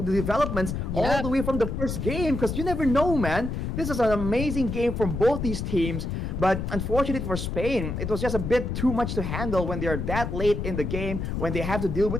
the developments all the way from the first game, because you never know, man. This is an amazing game from both these teams, but unfortunately for Spain, it was just a bit too much to handle when they're that late in the game, when they have to deal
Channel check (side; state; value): left; noise; rumble, 3 dB below the sound